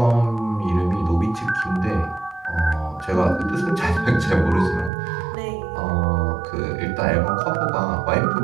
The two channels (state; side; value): drops out; left; at 4.9 s